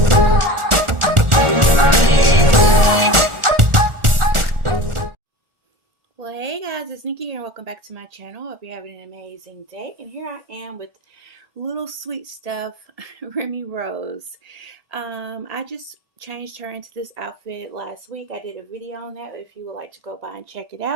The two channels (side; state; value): left; late; 1.4 ms